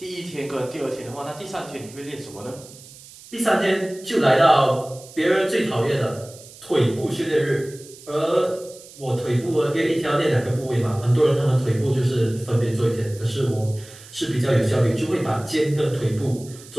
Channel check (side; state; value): right; noise; hiss, 20 dB below the sound